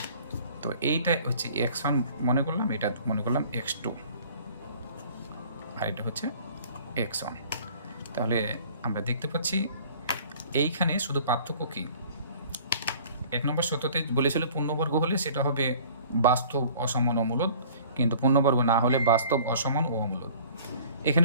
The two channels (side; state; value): both; inverted; correlation -0.50